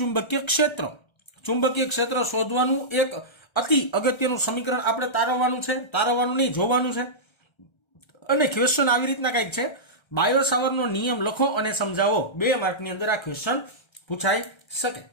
ક્ષેત્ર. ચુંબકીય ક્ષેત્ર શોધવાનું એક અતિ અગત્યનું સમીકરણ આપણે તારવવાનું નહીં, જોવાનું છે. અને ક્વેશ્ચન આવી રીતના કંઈક છે, બાયો સાવરનો નિયમ લખો અને સમજાવો. 2 માર્કની અંદર આ ક્વેશ્ચન પૂછાઈ શકે.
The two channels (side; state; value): right; late; 1.3 ms